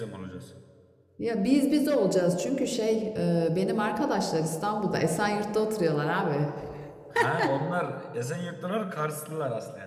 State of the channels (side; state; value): both; identical; correlation 1.00